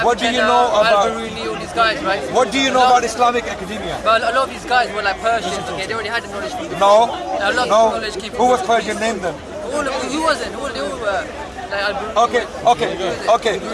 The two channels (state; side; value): identical; both; correlation 1.00